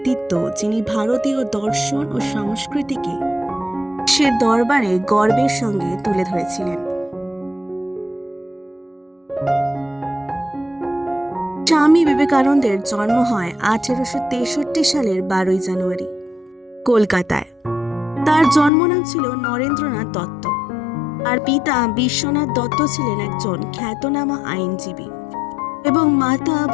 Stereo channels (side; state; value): right; drops out; at 18.7 s